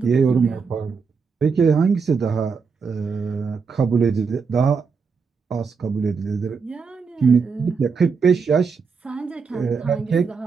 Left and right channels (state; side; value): quieter; left; 5.4 dB